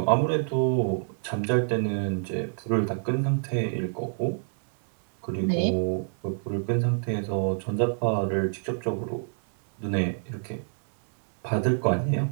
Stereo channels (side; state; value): left; silent; digital silence